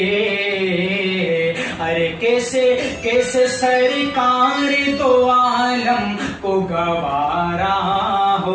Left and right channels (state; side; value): identical; both; correlation 1.00